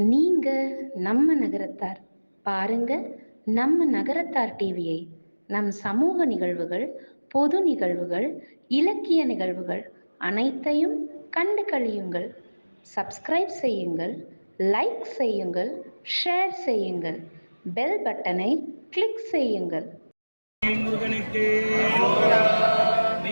நம்ம நகரத்தார் பாருங்க நம்ம நகரத்தார் டிவியை. நம் சமூக நிகழ்வுகள், பொது நிகழ்வுகள், இலக்கிய நிகழ்வுகள் அனைத்தையும் கண்டு கழியுங்கள். சப்ஸ்கிரைப் செய்யுங்கள், லைக் செய்யுங்கள், ஷேர் செய்யுங்கள், பெல் பட்டனை கிளிக் செய்யுங்கள். முருகனுக்கு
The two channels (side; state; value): both; inverted; correlation -1.00